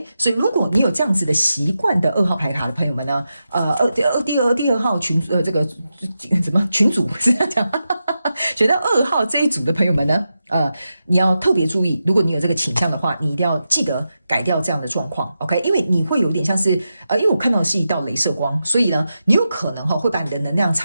所以如果你有這樣子的習慣的2號牌卡的朋友們呢，第二號群這個怎麼群組是這樣講？選到2號這一組的朋友們呢，你要特別注意，如果你有這個傾向的話，你一定要記得改掉這樣的狀況 ，OK？ 因為你會有點像是因為我看到的是一道雷射光，所以呢，你有可能會把你的能量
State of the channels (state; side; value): inverted; both; correlation -0.89